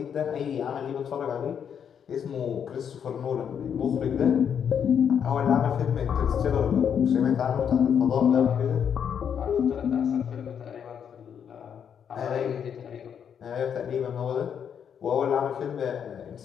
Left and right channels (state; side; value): quieter; right; 8.0 dB